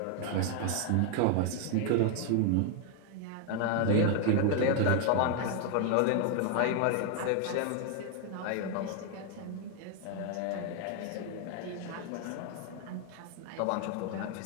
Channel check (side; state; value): both; different; correlation 0.00